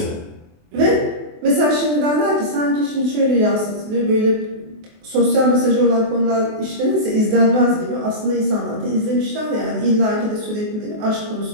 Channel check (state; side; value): late; left; 24 ms